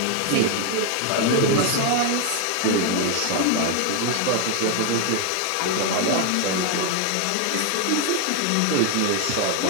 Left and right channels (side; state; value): both; different; correlation 0.01